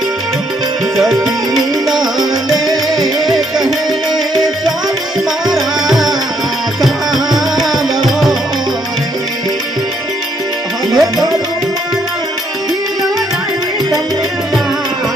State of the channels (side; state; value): both; normal; correlation 0.71